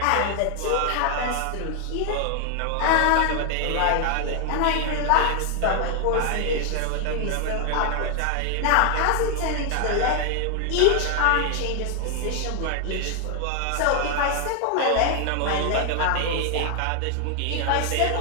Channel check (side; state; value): both; different; correlation 0.00